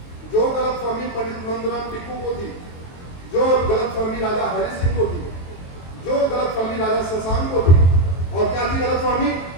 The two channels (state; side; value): late; right; 23 ms